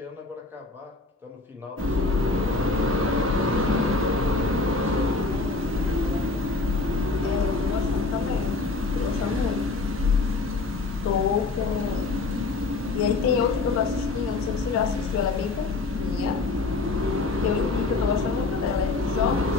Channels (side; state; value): right; quieter; 3.6 dB